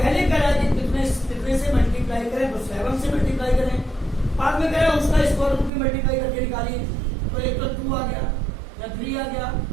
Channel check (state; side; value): drops out; left; at 5.7 s